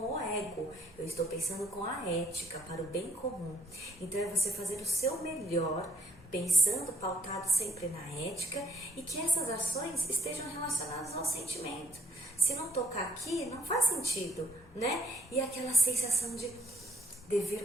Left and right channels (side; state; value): both; normal; correlation 0.64